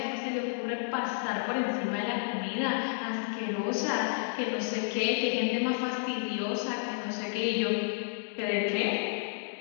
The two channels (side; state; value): right; silent; digital silence